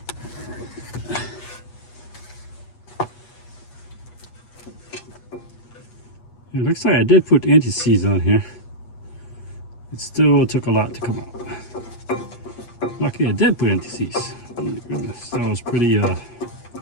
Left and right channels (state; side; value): late; right; 8.3 ms